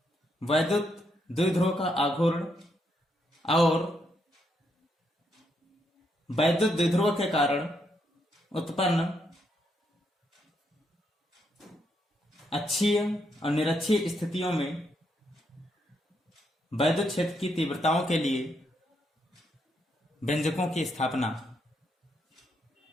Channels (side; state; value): both; normal; correlation 0.77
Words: वैद्युत द्विध्रुव का आघूर्ण और वैद्युत द्विध्रुव के कारण उत्पन्न अक्षीय और निरक्षीय स्थितियों में वैद्युत क्षेत्र की तीव्रताओं के लिए व्यंजकों की स्थापना।